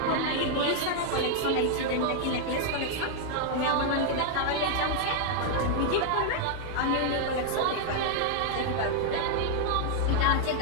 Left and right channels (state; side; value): different; both; correlation 0.00